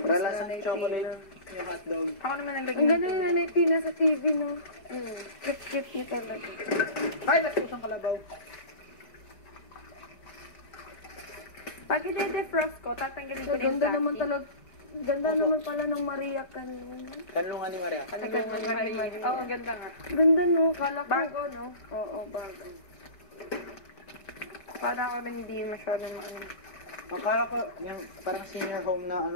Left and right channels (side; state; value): right; late; 4.7 ms